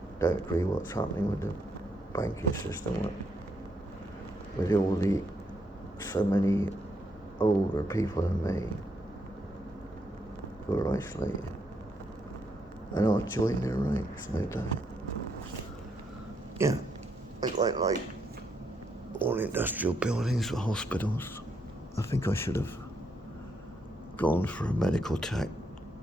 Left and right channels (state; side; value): normal; both; correlation 0.77